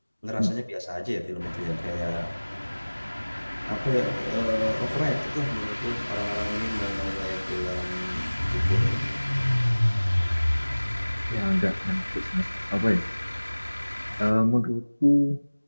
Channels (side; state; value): both; inverted; correlation -1.00